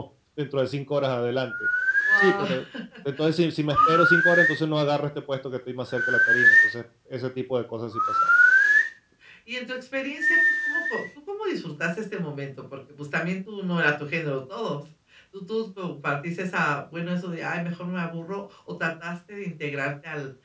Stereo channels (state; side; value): identical; both; correlation 1.00